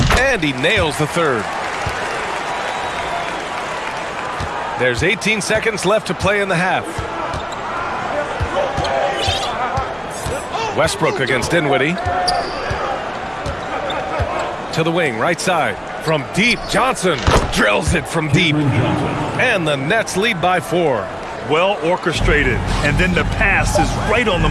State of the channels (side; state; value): both; identical; correlation 1.00